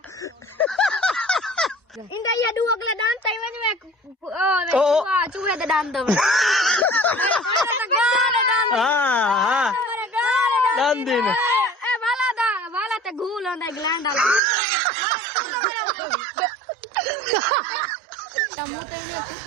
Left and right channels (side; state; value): left; drops out; at 14.4 s